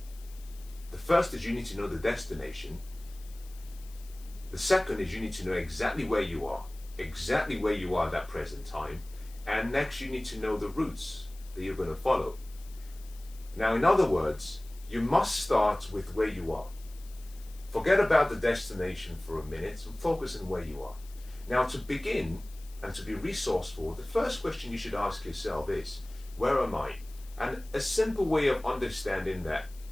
The first is you need to know the destination. The second is you need to know exactly where you are at that present time. And next, you need to know the routes that you're going to follow. Now, in other words, you must start with where you are. Forget about the destination for a minute and focus on where you are. Now, to begin and to be resourceful, the first question you should ask yourself is, where am I? And a simple way of understanding that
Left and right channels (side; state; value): left; noise; hiss, 22 dB below the sound